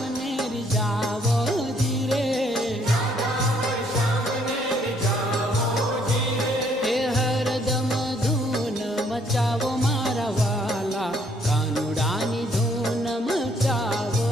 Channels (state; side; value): normal; both; correlation 0.66